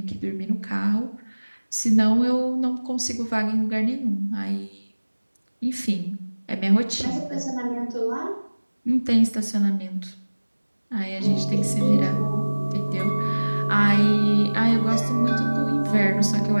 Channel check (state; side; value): inverted; both; correlation -1.00